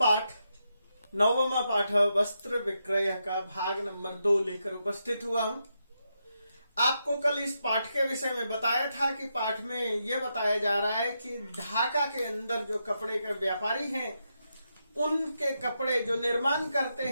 9वां पाठ वस्त्र विक्रय का भाग नंबर 2 लेकर उपस्थित हुआ हूं। आपको कल इस पाठ के विषय में बताया था कि पाठ में यह बताया जा रहा है कि ढाका के अंदर जो कपड़े के व्यापारी हैं उनके कपड़े जो निर्माण करते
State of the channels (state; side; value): inverted; both; correlation -0.84